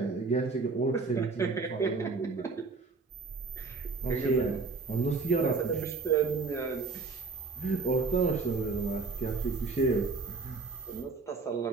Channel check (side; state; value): left; quieter; 4.2 dB